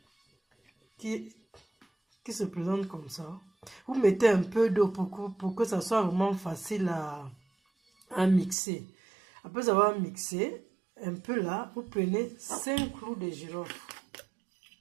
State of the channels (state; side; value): drops out; left; at 8.6 s